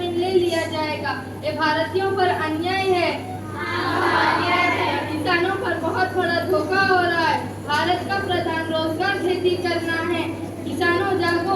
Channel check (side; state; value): both; identical; correlation 1.00